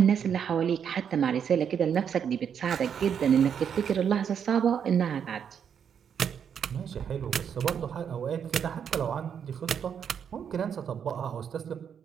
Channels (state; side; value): quieter; left; 7.8 dB